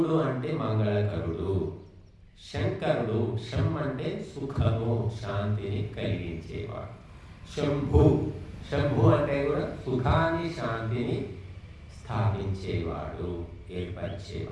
అంటే మంగళకరుడు, శంకరుడు, శం అంటే సుఖము, శాంతిని కలిగించేవాడు. శంభు అంటే కూడా సుఖాన్ని, శాంతిని స్థాపించేవాడు,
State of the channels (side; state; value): both; identical; correlation 1.00